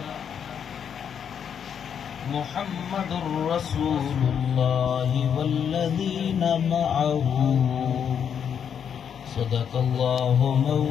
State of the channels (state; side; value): quieter; right; 7.9 dB